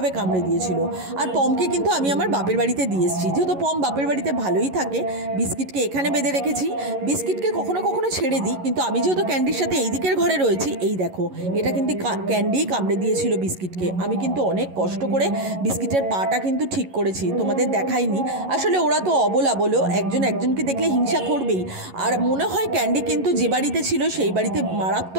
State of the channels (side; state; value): left; late; 11 ms